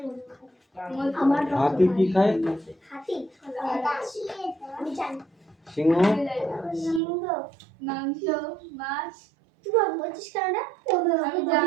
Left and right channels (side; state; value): left; drops out; at 7.0 s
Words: হাতি কি খায়? সিংহ মাংস, মাছ।